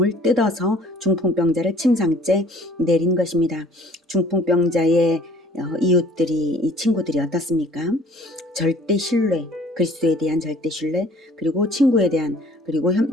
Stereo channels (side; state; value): both; normal; correlation 0.53